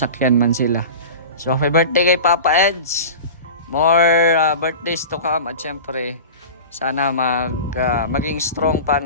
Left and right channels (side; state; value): both; inverted; correlation -0.33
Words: man sila. So, happy birthday kay Papa Eds. More birthdays to come at syempre sana maging strong pa